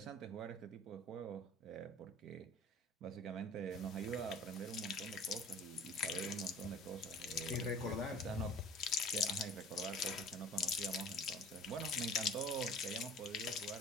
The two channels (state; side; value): normal; both; correlation 0.46